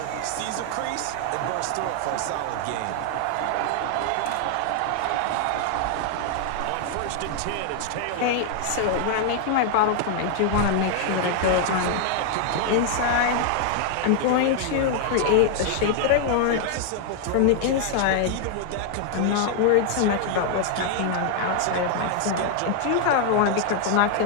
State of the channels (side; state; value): both; different; correlation 0.00